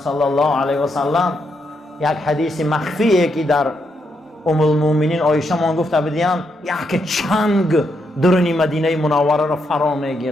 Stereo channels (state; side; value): normal; both; correlation 0.80